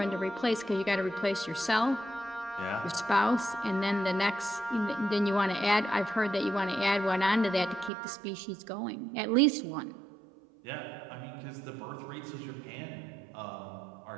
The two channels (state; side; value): drops out; left; at 7.9 s